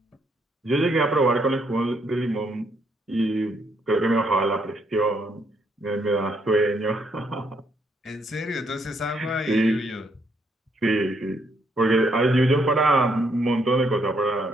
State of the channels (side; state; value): both; normal; correlation 0.73